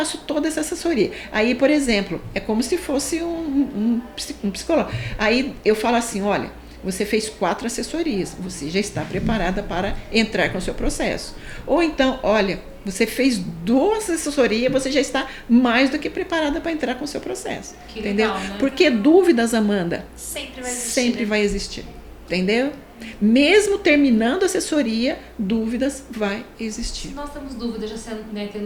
toda essa assessoria. Aí, por exemplo, é como se fosse um psicólogo. Aí eu falo assim: olha, você fez 4 assessorias, você já está preparada para entrar com o seu processo. Ou então, olha, você fez 2 assessorias, você já está mais do que preparada para entrar com o seu processo. Que entendeu? Legal, né? Porque dúvidas, Amanda, sempre vai existir. Sempre vai existir. Entendeu? Mesmo terminando a assessoria, dúvidas vai existir. Se nós temos dúvidas, já sendo, né,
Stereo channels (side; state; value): both; identical; correlation 1.00